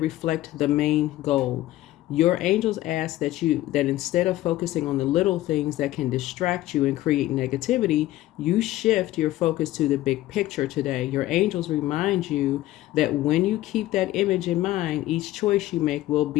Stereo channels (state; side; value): quieter; right; 15.6 dB